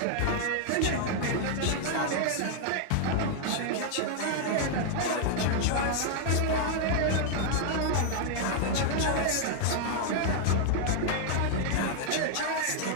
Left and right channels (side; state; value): both; different; correlation 0.00